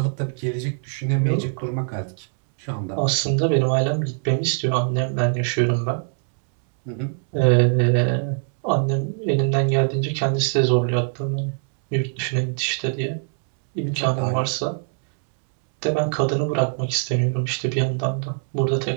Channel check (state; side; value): silent; left; digital silence